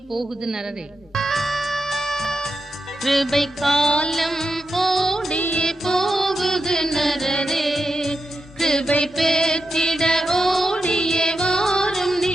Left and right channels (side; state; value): both; normal; correlation 0.88